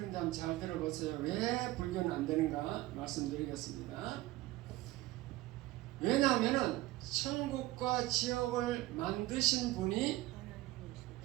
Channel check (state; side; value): quieter; left; 17.8 dB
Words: 한번 잘 들어보세요. 왜 불교는 안 되는가 말씀드리겠습니다. 왜냐하면 천국과 지옥을 만드신 분이